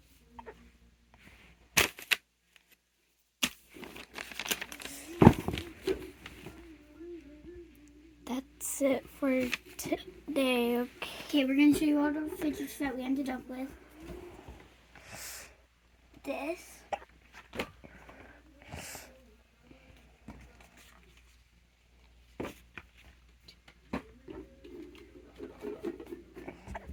That's it for today. Okay, we're gonna show you all the fidgets that we ended up with. This.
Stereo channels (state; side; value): identical; both; correlation 1.00